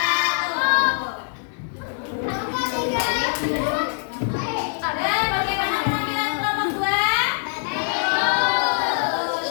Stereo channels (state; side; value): silent; right; digital silence